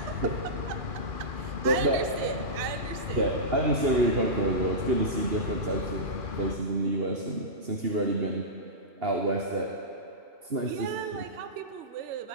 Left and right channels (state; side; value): late; left; 3.3 ms